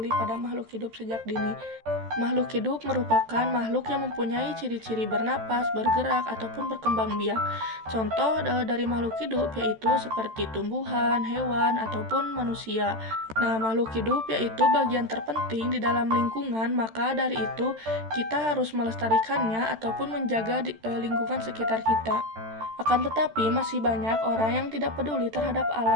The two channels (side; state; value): left; late; 13 ms